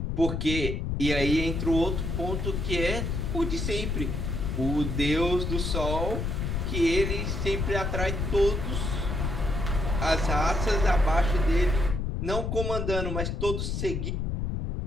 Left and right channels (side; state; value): left; noise; rumble, 1 dB below the sound